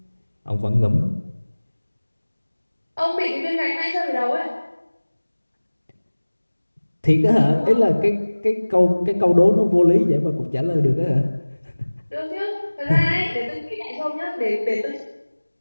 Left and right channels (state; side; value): inverted; both; correlation -1.00